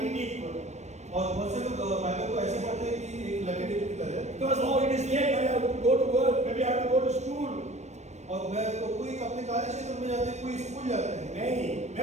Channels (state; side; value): late; left; 0.33 ms